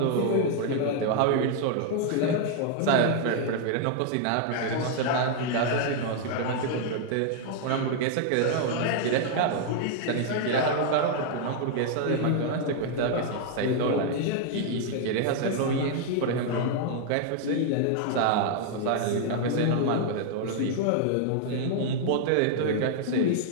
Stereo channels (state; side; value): different; both; correlation 0.00